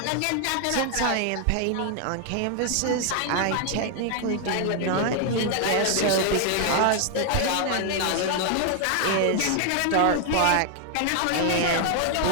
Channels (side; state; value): both; different; correlation 0.00